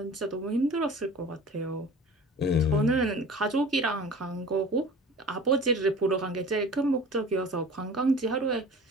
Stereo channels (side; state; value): both; normal; correlation 0.41